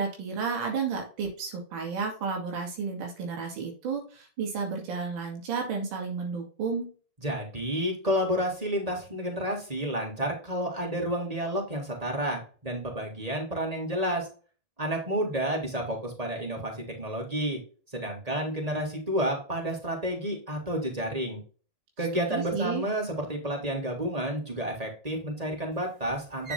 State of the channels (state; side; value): late; left; 1.8 ms